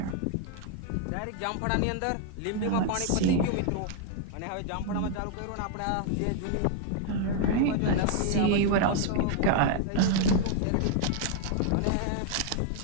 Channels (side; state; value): both; different; correlation 0.00